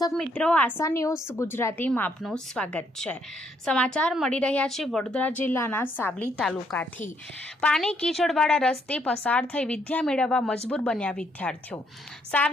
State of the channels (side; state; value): both; normal; correlation 0.72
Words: મિત્રો, આશા ન્યૂઝ ગુજરાતીમાં આપનું સ્વાગત છે। સમાચાર મળી રહ્યા છે વડોદરા જિલ્લાના સાવલી તાલુકાથી। પાણી કીચડવાળા રસ્તે પસાર થઈ વિદ્યા મેળવવા મજબૂર બન્યા વિદ્યાર્થીઓ।